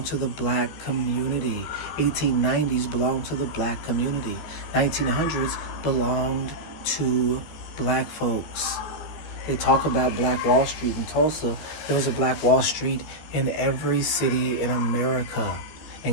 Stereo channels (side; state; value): right; late; 14 ms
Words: to the black community. 1890s belonged to the black community. 1900s belonged to black folks. They talk about Black Wall Street in Tulsa. There was a Black Wall Street in every city in America.